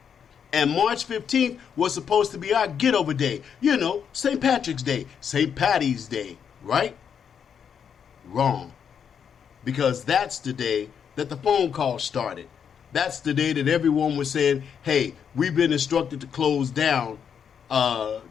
And March 15th was supposed to be our get over day. St. Patrick's Day, St. Patty's Day, right? Wrong. Because that's the day that the phone call started. That's the day that everyone was saying, hey, we've been instructed to close down.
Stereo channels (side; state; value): right; quieter; 7.6 dB